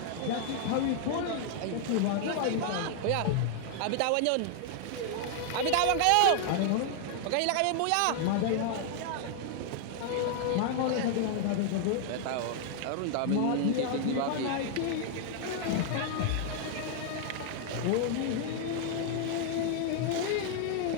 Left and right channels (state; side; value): different; both; correlation 0.00